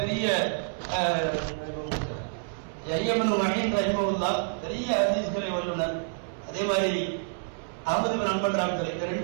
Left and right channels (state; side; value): silent; left; 59 dB below the other